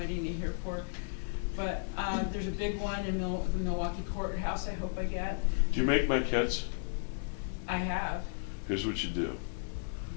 to hear for, but there's a big one in the Milwaukee courthouse. I hope I get. Do you make maquettes? I have. Here's what you do.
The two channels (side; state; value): right; silent; digital silence